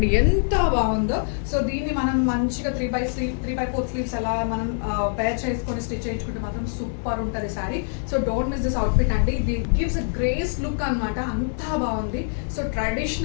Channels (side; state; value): right; silent; digital silence